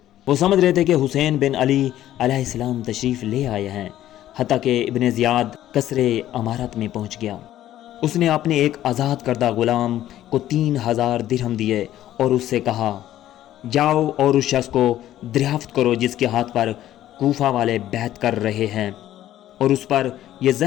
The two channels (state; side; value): quieter; right; 12.9 dB